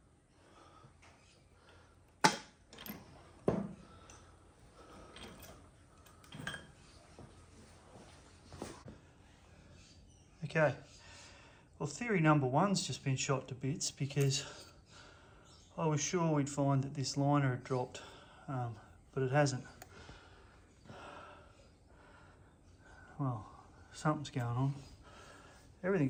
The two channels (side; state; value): both; identical; correlation 1.00